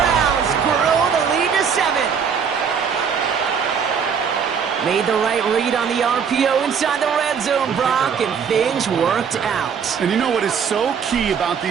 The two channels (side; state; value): left; quieter; 6.8 dB